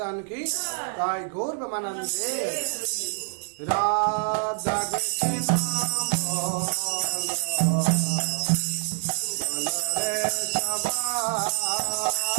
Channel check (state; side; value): silent; left; digital silence